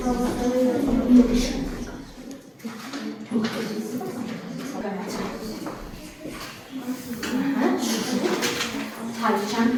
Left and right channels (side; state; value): both; identical; correlation 1.00